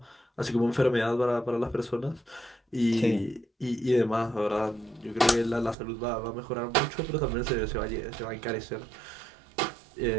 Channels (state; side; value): drops out; left; at 5.8 s